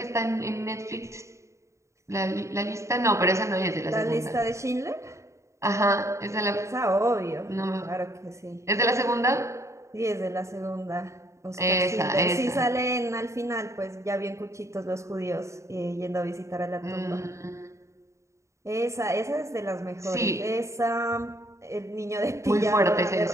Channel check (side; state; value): left; late; 0.14 ms